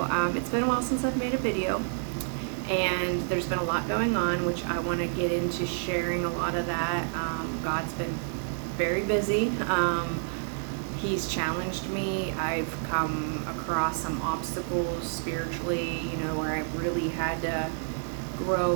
it's been a while since I've made a video, and there's been a lot going on, which I want to get into sharing a lot of that. God's been very busy. He's challenged me. I've come across some obstacles spiritually, where I've really had to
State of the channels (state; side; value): silent; left; digital silence